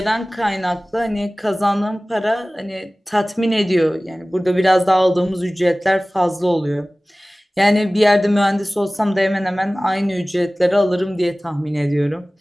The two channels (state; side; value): normal; both; correlation 0.98